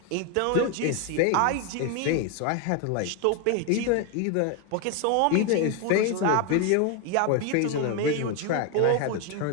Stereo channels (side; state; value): both; different; correlation 0.01